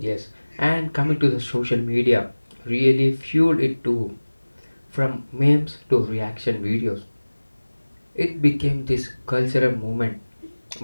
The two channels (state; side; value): inverted; both; correlation -1.00